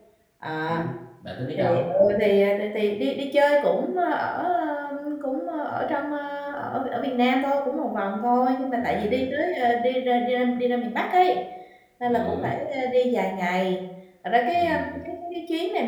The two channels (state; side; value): identical; both; correlation 1.00